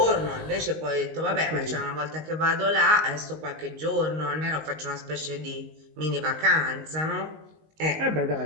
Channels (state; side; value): late; left; 19 ms